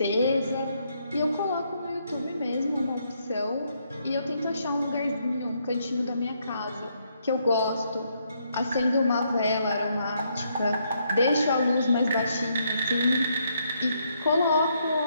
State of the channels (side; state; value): both; inverted; correlation -0.74